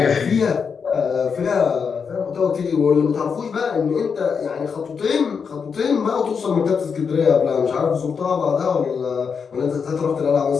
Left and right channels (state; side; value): quieter; right; 6.1 dB